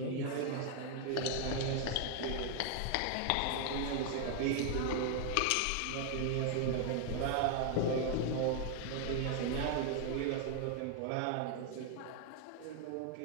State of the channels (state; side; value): different; both; correlation 0.00